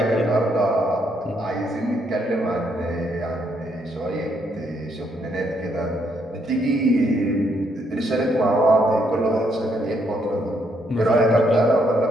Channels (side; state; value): both; normal; correlation 0.73